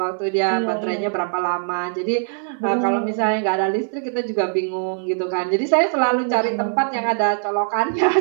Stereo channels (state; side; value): silent; left; 64 dB below the other